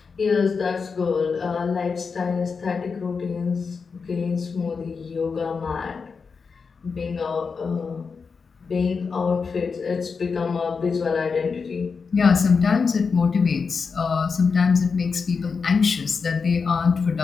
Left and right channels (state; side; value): quieter; right; 5.2 dB